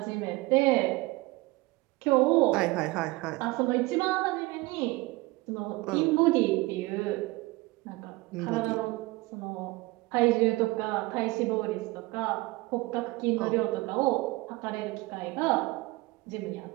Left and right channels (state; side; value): quieter; left; 21.7 dB